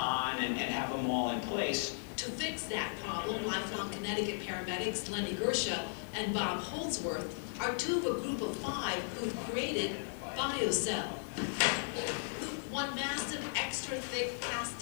and have them all in place. To fix that problem, lifelong Connecticut paramedics Lenny Gersha and Bob Holdsworth are two of a group of 5 who've created BioCell. One massive extra thick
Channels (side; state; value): right; silent; digital silence